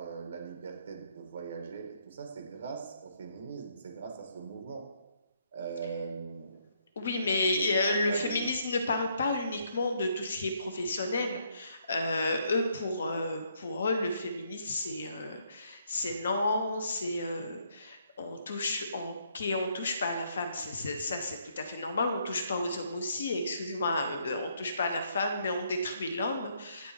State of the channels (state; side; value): inverted; both; correlation -0.71